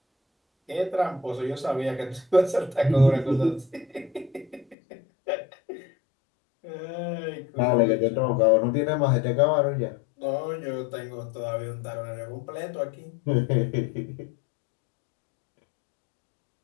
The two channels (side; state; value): right; drops out; at 4.8 s